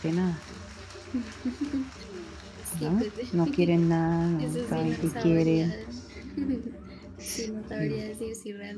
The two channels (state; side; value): identical; both; correlation 1.00